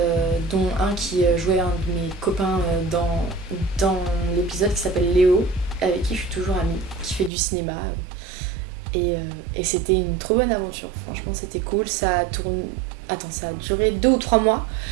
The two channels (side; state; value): left; drops out; at 7.3 s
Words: dont un qui jouait un de mes copains dans l'épisode qui s'appelle Léo, avec qui je suis toujours amie, qui fait du cinéma. Et c'était une trop bonne aventure, franchement c'était cool, ça a duré 2 ou 3 mois.